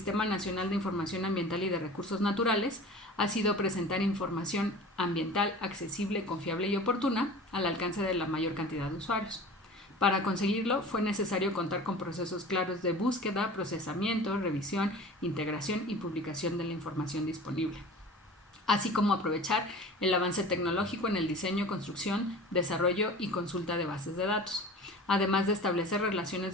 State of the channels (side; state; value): both; normal; correlation 0.39